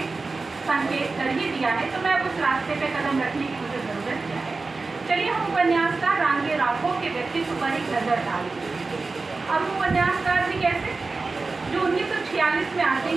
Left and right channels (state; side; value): quieter; left; 3.9 dB